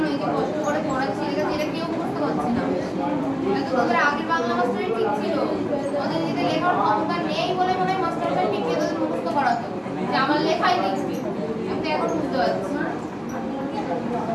এই যে কষ্ট করে পড়াচ্ছি এটা কেউ বুঝতে পারছে না এটা তো তোদের আগের বাংলা মাস্টারই ঠিক ছিল ওদের যদি লেখার ক্ষমতা নেই বলে মনে হয় মাস্টারটা পিটিয়ে তোদের মুখস্থ করাতো যে আমার লেখাই লিখবি আমি তো এখন বুঝতে পারছি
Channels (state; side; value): identical; both; correlation 1.00